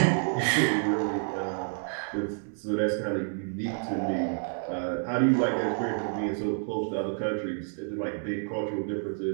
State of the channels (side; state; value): left; silent; digital silence